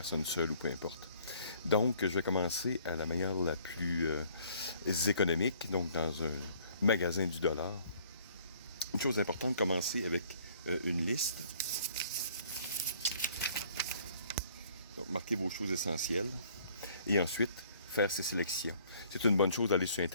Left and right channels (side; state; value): both; inverted; correlation -0.59